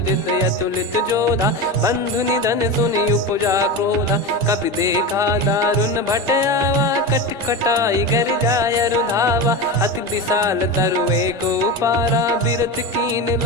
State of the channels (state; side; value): normal; both; correlation 0.22